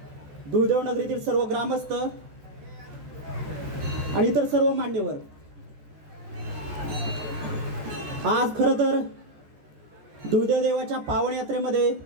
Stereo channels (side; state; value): left; late; 14 ms